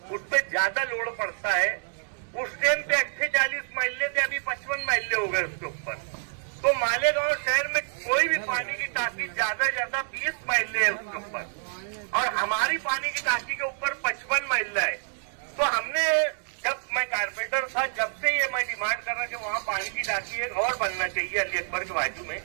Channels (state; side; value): silent; left; digital silence